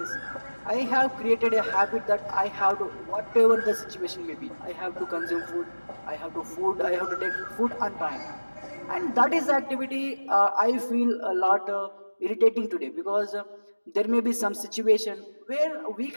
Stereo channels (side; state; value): both; inverted; correlation -1.00